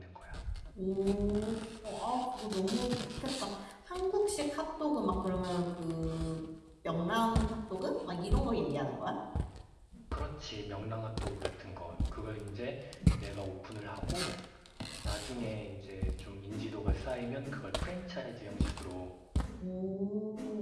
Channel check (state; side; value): identical; both; correlation 1.00